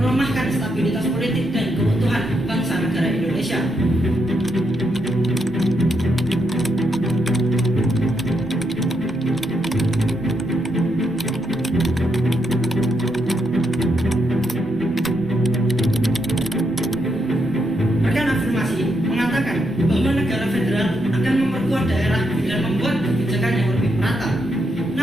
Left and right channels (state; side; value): noise; right; rumble, 22 dB below the sound